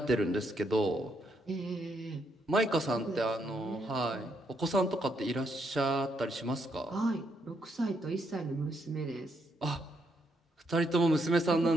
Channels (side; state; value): both; normal; correlation 0.76